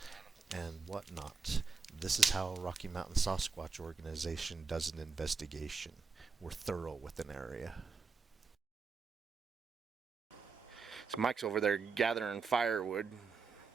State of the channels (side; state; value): left; quieter; 4.9 dB